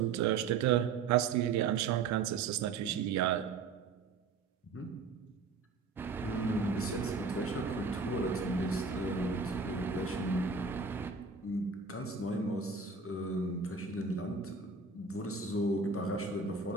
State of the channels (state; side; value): quieter; left; 4.8 dB